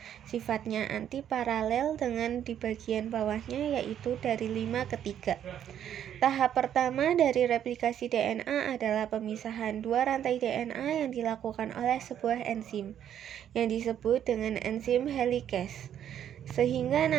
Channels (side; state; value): left; quieter; 9.9 dB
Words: Sifatnya antiparalel dengan di bagian bawahnya yaitu dari 5 ke 3. Tahap pertama dari replikasi DNA adalah pemisahan dua rantai DNA yang dilakukan oleh sebuah enzim yang disebut dengan enzim helikase, sehingga